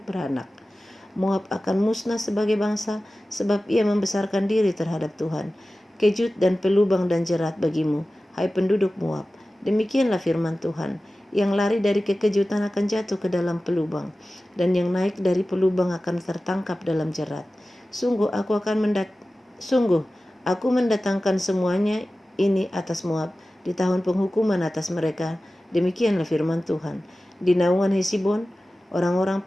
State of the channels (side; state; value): both; normal; correlation 0.96